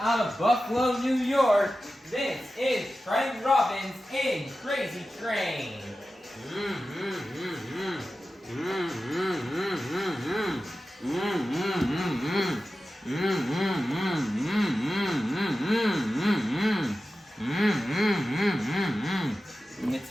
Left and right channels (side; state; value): both; normal; correlation 0.93